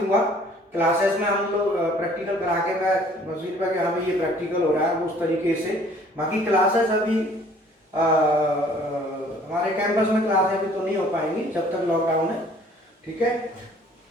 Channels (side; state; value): both; normal; correlation 0.55